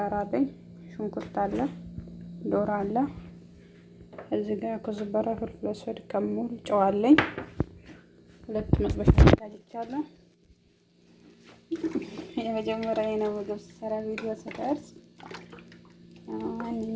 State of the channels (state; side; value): identical; both; correlation 1.00